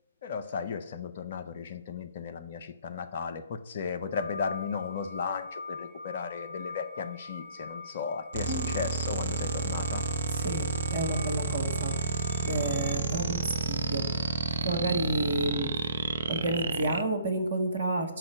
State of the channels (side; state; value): both; inverted; correlation -0.55